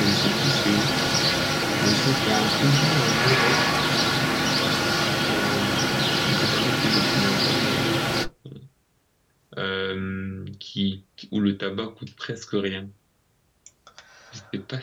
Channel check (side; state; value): both; identical; correlation 1.00